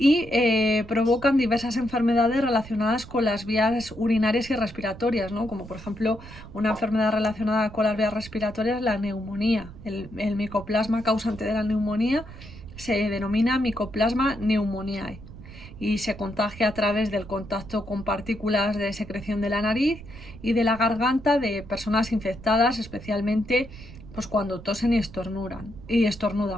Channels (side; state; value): right; noise; rumble, 16 dB below the sound